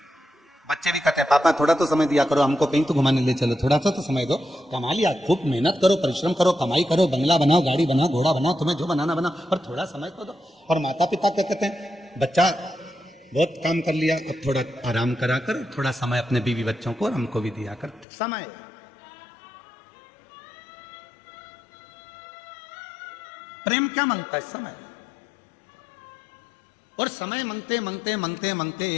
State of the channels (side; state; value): right; drops out; at 18.1 s